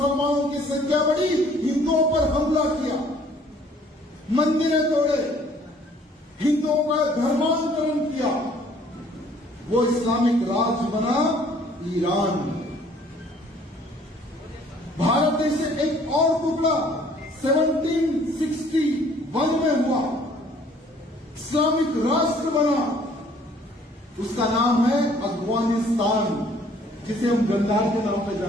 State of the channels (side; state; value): both; normal; correlation 0.58